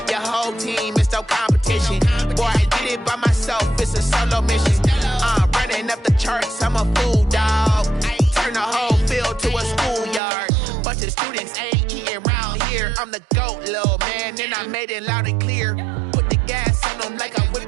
your whole team is no competition. Boy, I did it by myself, it's a solo mission. Running up the charts, I'm a fool, dog. Turn the whole field to a schoolyard. Bunch of students ain't eating round here. I'm the GOAT, little man, and I made it loud and clear. Put the gas on them like I'm with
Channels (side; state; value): left; drops out; at 10.2 s